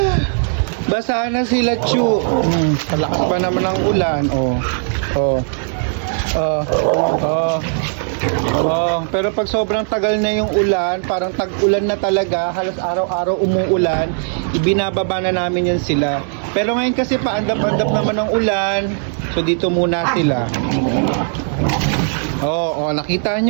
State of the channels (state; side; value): silent; left; 59 dB below the other